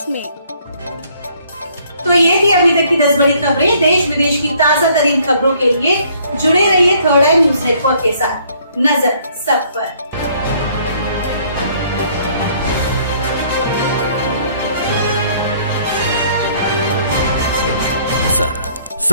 तो ये थी अभी तक की 10 बड़ी खबरें। देश विदेश की ताजा तरीन खबरों के लिए जुड़े रहिए थर्ड आई न्यूज नेटवर्क के साथ। नजर सब पर।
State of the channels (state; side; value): inverted; both; correlation -0.62